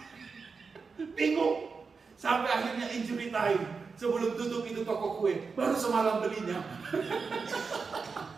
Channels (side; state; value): left; quieter; 4.9 dB